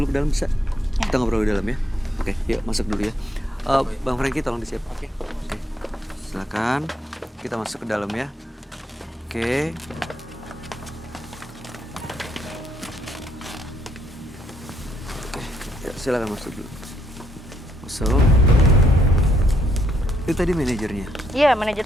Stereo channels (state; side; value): normal; both; correlation 0.74